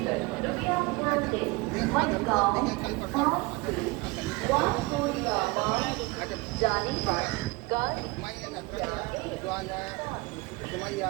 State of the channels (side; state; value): left; quieter; 24.2 dB